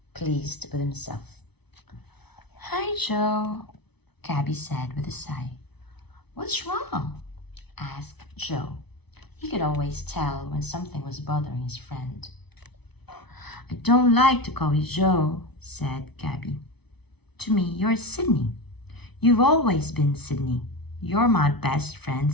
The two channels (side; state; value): right; late; 0.99 ms